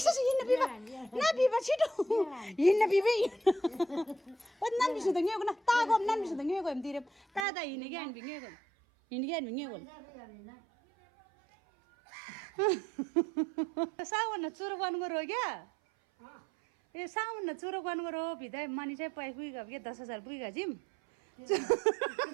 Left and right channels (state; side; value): drops out; left; at 7.5 s